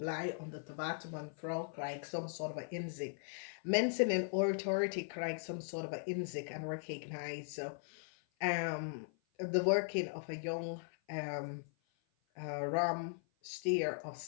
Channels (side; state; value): right; silent; 52 dB below the other